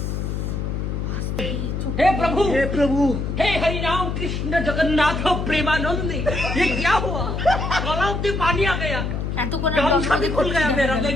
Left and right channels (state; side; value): noise; left; hum, 2 dB below the sound